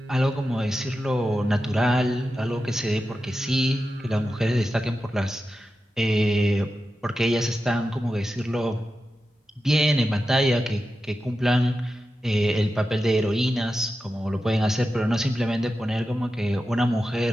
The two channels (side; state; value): both; normal; correlation 0.91